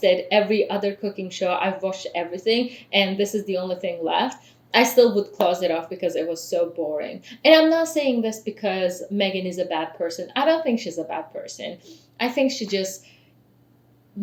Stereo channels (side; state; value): both; identical; correlation 1.00